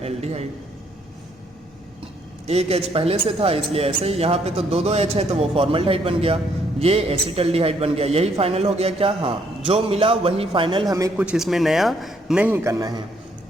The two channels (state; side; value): normal; both; correlation 0.69